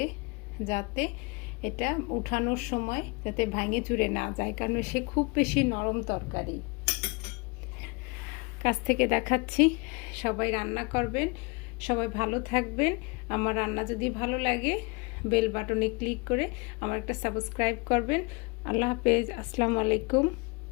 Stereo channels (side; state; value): right; quieter; 29.6 dB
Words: যাতে এটা উঠানোর সময় যাতে ভাঙে চুরে না যায়, কারণ সে খুব বেশি নরম তরকারি। কাছ থেকে দেখাচ্ছি। সবাই রান্না করবেন, সবাই ভালো থাকবেন। আমার রান্না যদি ভালো লাগে বেল বাটনে ক্লিক করে আমার একটা সাবস্ক্রাইব করবেন। আল্লাহ হাফেজ, আসসালামু আলাইকুম।